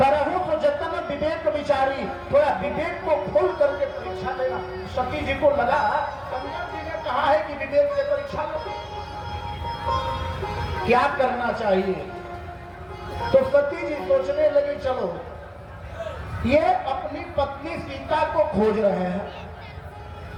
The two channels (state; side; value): identical; both; correlation 1.00